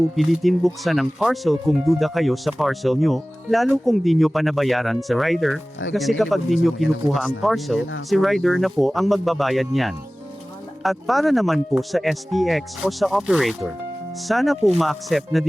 pilitin buksan ang parcel kung duda kayo sa parcel nyo, lalo kung di nyo pa nabayaran sa rider, kasi kapag di nyo kinukuha ang parcel, si rider na po ang magbabayad niyan. At para naman po sa SPX o sa operator, sana po ma-accept na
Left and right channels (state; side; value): normal; both; correlation 0.98